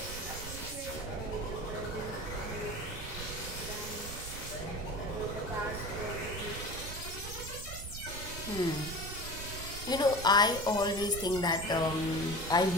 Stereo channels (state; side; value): noise; right; rumble, 9 dB below the sound